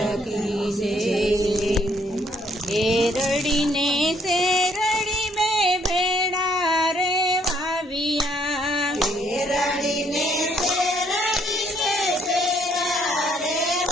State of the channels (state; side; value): normal; both; correlation 0.68